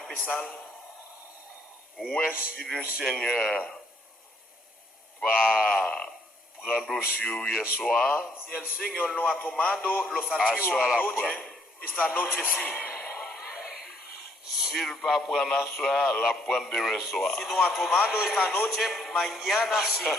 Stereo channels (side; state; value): both; normal; correlation 0.68